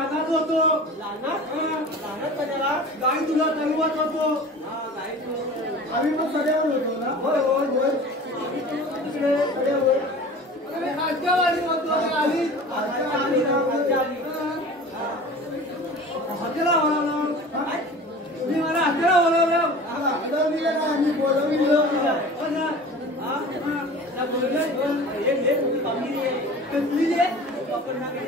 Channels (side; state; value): both; normal; correlation 0.39